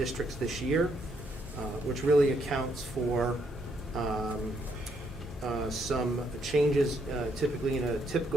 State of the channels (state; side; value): normal; both; correlation 0.74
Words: this year, which really accounts for some changes. Typically in a